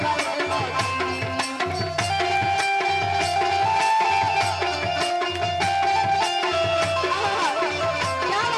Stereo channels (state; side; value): identical; both; correlation 1.00